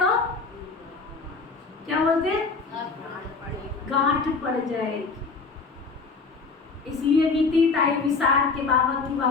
क्या बोलते हैं? गांठ पड़ जाएगी। इसलिए बीती ताई विसार के बाबा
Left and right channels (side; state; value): right; quieter; 4.5 dB